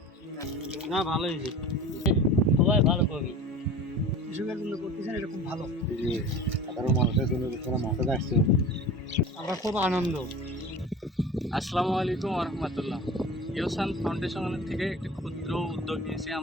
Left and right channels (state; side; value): normal; both; correlation 0.37